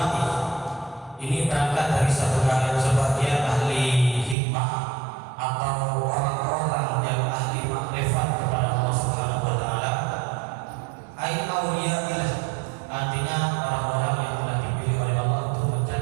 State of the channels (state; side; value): drops out; left; at 4.4 s